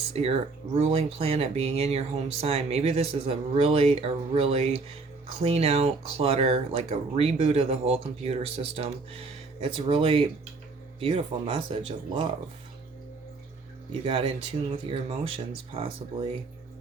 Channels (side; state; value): left; quieter; 3.9 dB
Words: ruling planet, being in your home sign. Maybe this is a really clean out clutter, like a reboot of the whole computer system. It's a really beautiful message of love. You got in tune with your emotions, possibly.